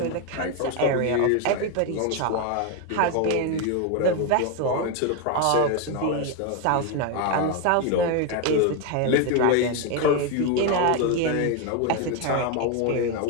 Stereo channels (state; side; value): different; both; correlation 0.02